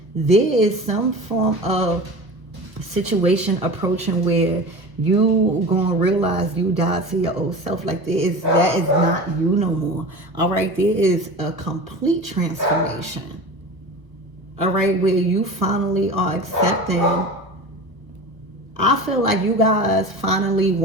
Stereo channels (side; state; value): left; late; 1.0 ms